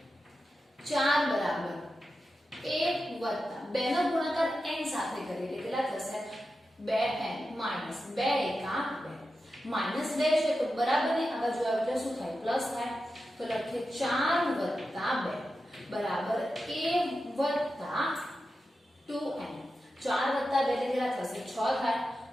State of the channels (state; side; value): normal; both; correlation 0.91